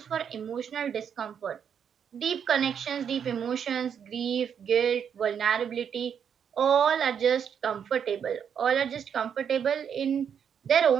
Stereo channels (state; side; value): quieter; left; 7.8 dB